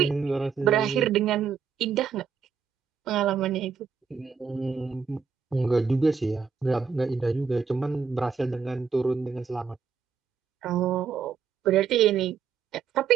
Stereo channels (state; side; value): quieter; left; 6.3 dB